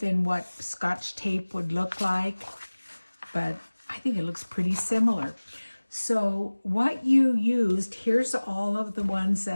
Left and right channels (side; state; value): both; inverted; correlation -1.00